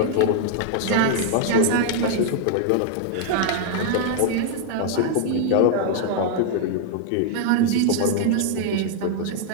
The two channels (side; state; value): both; different; correlation 0.00